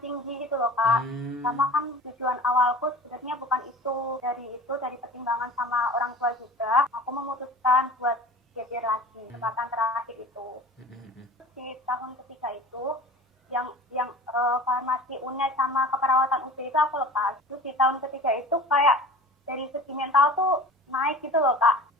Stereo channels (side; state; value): both; normal; correlation 0.39